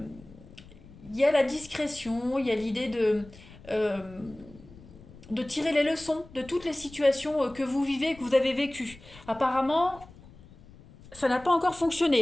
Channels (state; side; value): noise; left; rumble, 21 dB below the sound